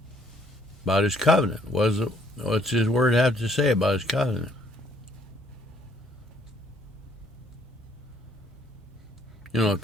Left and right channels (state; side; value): normal; both; correlation 0.66